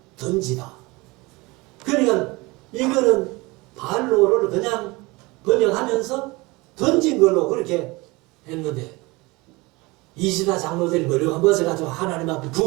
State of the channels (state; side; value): quieter; left; 23.6 dB